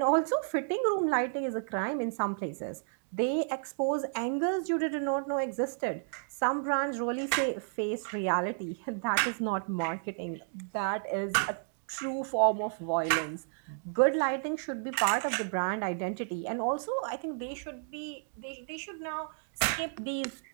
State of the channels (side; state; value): left; silent; digital silence